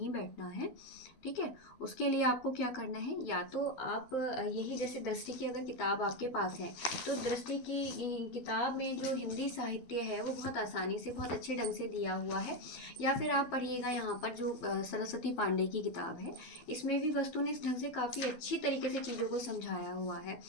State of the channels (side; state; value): right; late; 12 ms